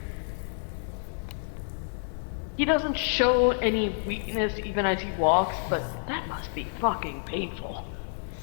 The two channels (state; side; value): silent; right; 59 dB below the other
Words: He doesn't show any weakness even as he walks, but that must be fucking painful.